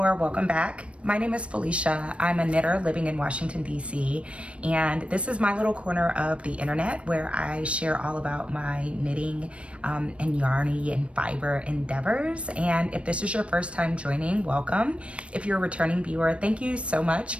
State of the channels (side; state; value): left; late; 0.061 ms